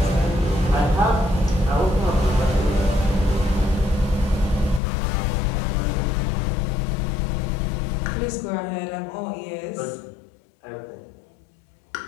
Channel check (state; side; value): drops out; right; at 4.8 s